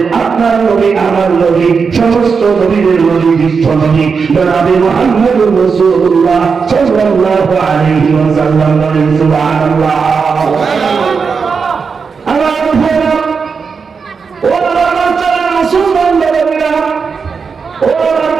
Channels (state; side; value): quieter; left; 5.5 dB